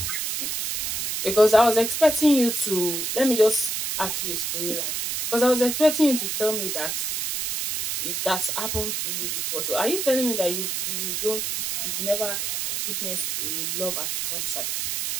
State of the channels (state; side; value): noise; right; hiss, 2 dB below the sound